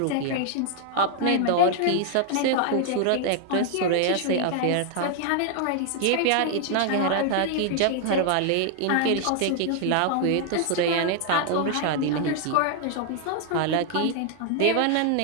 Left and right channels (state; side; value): different; both; correlation 0.00